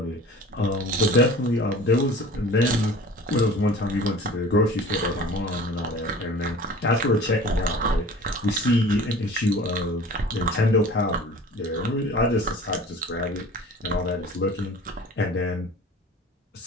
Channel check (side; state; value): both; normal; correlation 0.43